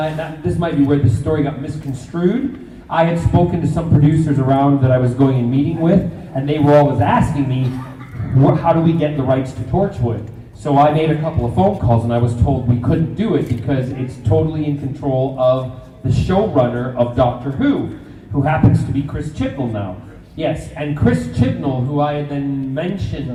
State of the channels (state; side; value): identical; both; correlation 1.00